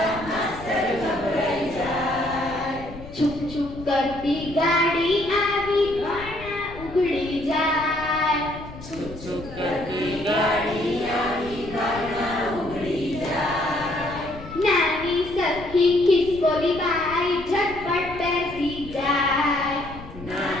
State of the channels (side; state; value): left; noise; rumble, 15 dB below the sound